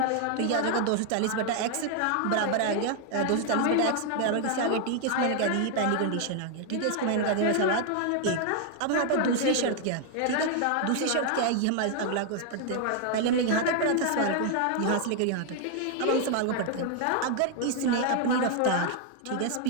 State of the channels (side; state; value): both; different; correlation 0.00